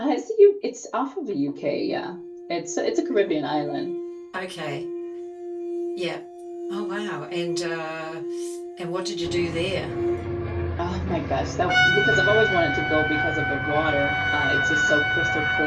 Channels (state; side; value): identical; both; correlation 1.00